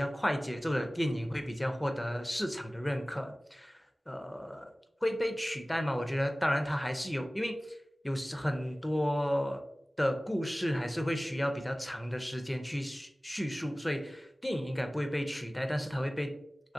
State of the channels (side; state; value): both; normal; correlation 0.98